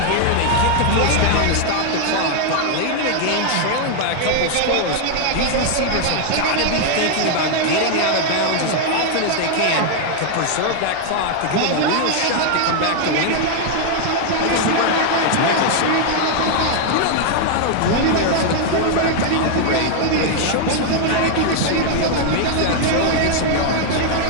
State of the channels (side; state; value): both; different; correlation 0.00